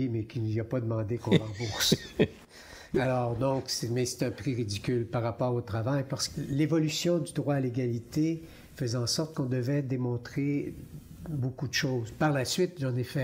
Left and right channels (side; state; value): both; identical; correlation 1.00